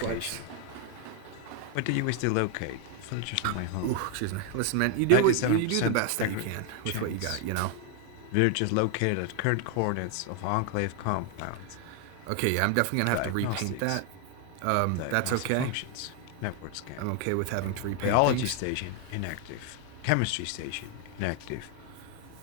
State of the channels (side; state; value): both; different; correlation 0.00